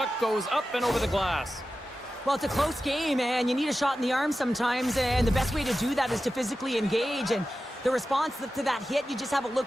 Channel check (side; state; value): both; normal; correlation 0.93